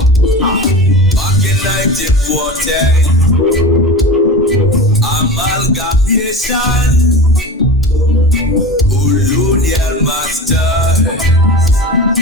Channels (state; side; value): normal; both; correlation 0.31